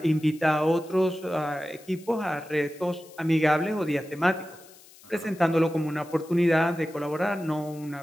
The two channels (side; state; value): left; noise; hiss, 23 dB below the sound